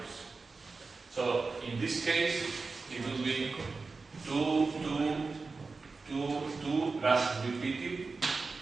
So in this case, it will be 2, 2, 2, 2 plus repeated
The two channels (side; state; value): left; quieter; 4.1 dB